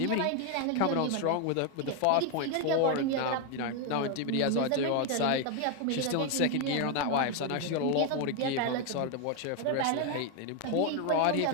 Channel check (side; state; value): both; different; correlation 0.01